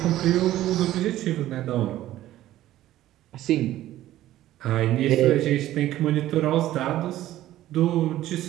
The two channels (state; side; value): quieter; left; 14.1 dB